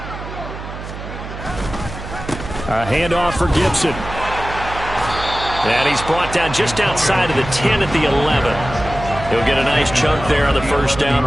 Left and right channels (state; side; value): noise; right; hum, 10 dB below the sound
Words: A handoff for Gibson. And he's brought down just outside of the 10 at the 11. He'll get a nice chunk there on the first down